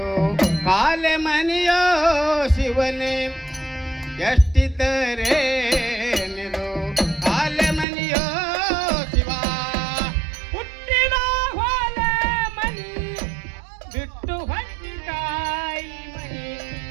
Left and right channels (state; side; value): drops out; left; at 7.9 s